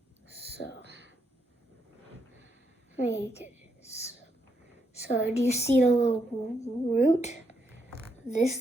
So, do you see the little root?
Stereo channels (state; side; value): normal; both; correlation 0.79